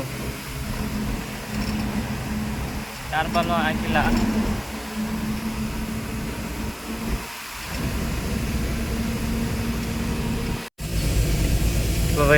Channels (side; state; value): both; identical; correlation 1.00